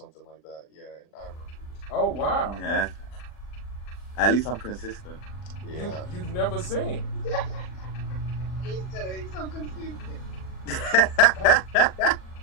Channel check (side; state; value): right; late; 40 ms